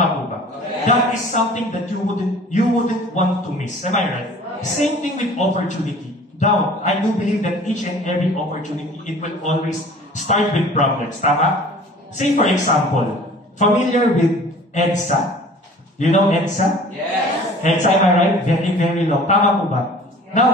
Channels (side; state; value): both; normal; correlation 0.46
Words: po ba? Yes. That is something that you wouldn't want to miss. Am I right? Same thing with opportunity. Now, I do believe that each and every opportunity, it will always start with problems. Tama? Say for example, familiar with EDSA? You know EDSA? Yes. EDSA, am I right? Very, very long. Tama po ba?